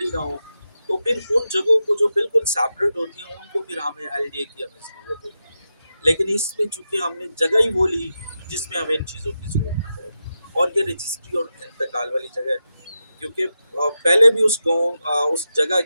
نہ ہو، تو پھر ان جگہوں کو جو بالکل سیپریٹ ہوتی ہیں ان کو پھر ہمیں LDA کی ہمیں ضرورت ہوتی ہے۔ لیکن اس میں چونکہ ہم نے جگہ ہی وہ لی جس میں ہمیں ان چیزوں کی ضرورت نہ پڑے، اور یہ رجسٹری اور انتقال والی جگہ ہے، کیونکہ پہلے بھی اس گاؤں اس جگہ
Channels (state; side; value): inverted; both; correlation -0.89